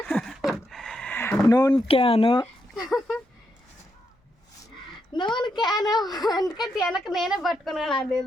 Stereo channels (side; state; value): both; normal; correlation 0.81